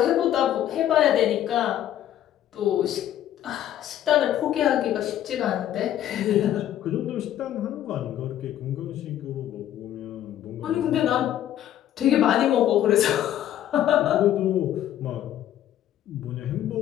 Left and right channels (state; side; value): quieter; right; 11.7 dB